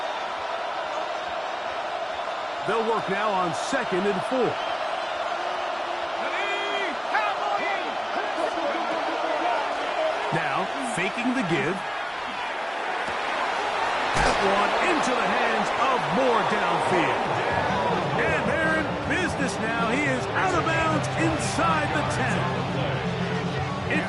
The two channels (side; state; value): both; identical; correlation 1.00